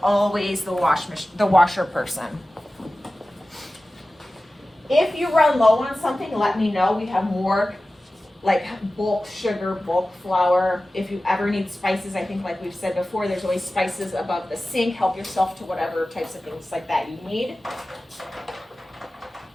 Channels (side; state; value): both; normal; correlation 0.96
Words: always the washer person. If you run low on something, let me know. We have more like bulk sugar, bulk flour. If you ever need spices, I think like we've said before, there's always spices above the sink. Help yourself to whatever types of things like that you need.